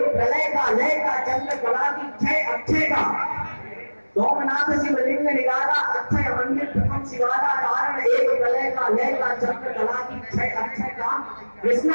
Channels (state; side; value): inverted; both; correlation -1.00